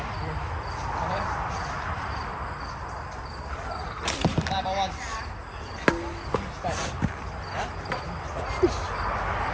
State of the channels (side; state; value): both; identical; correlation 1.00